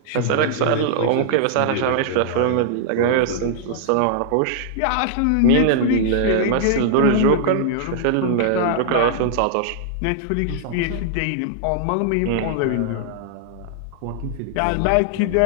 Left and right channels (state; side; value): different; both; correlation -0.01